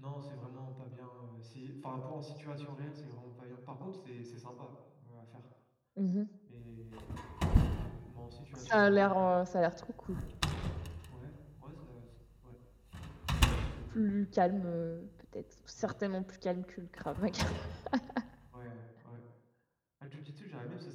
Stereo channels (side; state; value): both; identical; correlation 1.00